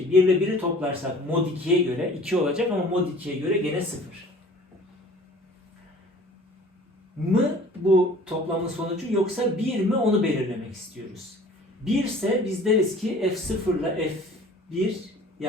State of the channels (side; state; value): both; normal; correlation 0.48